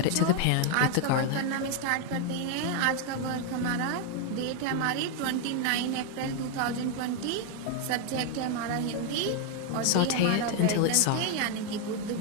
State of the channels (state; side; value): different; both; correlation 0.01